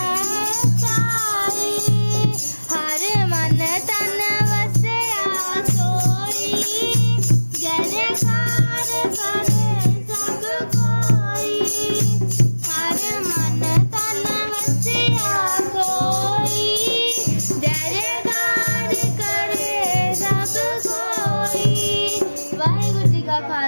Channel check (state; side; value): inverted; both; correlation -1.00